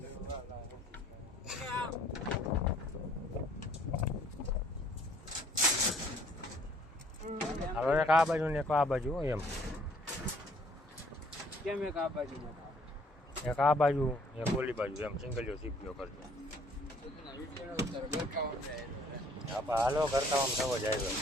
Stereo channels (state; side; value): normal; both; correlation 0.60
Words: હવે એક આ બાજુ ને એક આ બાજુ એમ કેમ એક આ બાજુ એક આ બાજુ એક ઓલી બાજુ એમ સિંગલિયો સીપીઓ કરજો આપણે હાલો કરતા આમ થવો જાય